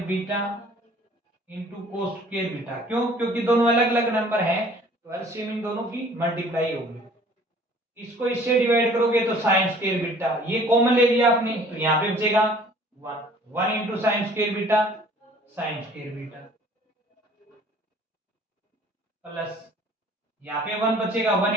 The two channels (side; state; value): both; normal; correlation 0.53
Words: beta into cos square beta. क्यों, क्योंकि दोनों अलग अलग नंबर हैं, तो एलसीएम इन दोनों की मल्टीप्लाई होगी। इसको इससे डिवाइड करोगे तो साइन स्क्वायर बीटा, ये कॉमन ले लिया आपने, तो यहाँ पे बचेगा 1 1 into sine square beta, sine square beta plus यहाँ पे 1 बचेगा, 1